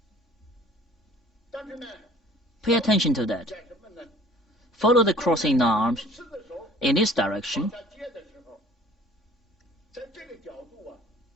Pay attention to that. Follow the crossing arms in this direction.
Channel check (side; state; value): both; normal; correlation 0.51